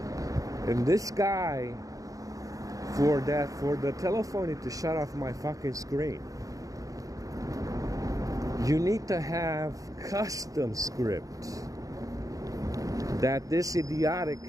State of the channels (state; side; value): late; left; 0.17 ms